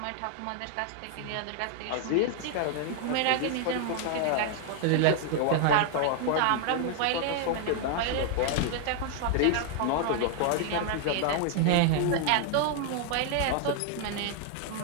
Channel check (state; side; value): different; both; correlation 0.00